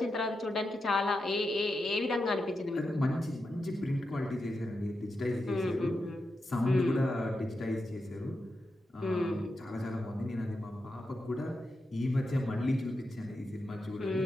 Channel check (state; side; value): normal; both; correlation 0.88